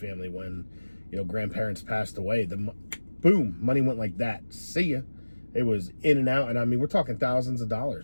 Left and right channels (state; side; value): inverted; both; correlation -1.00